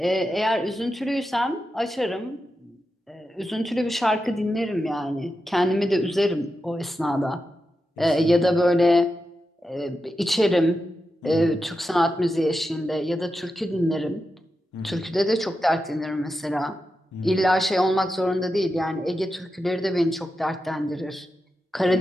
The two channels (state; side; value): normal; both; correlation 0.89